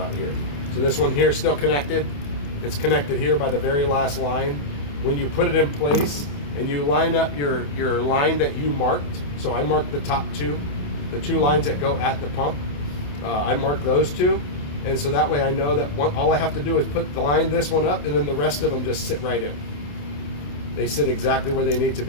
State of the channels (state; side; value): late; right; 28 ms